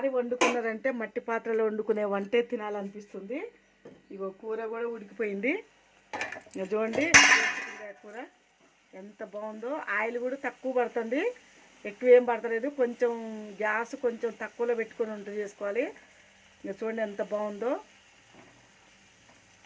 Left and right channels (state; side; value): identical; both; correlation 1.00